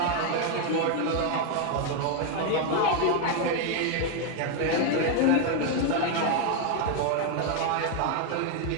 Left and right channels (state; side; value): different; both; correlation 0.01